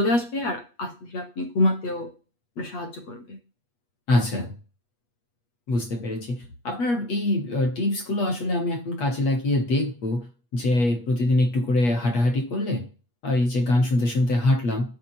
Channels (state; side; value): late; right; 8.3 ms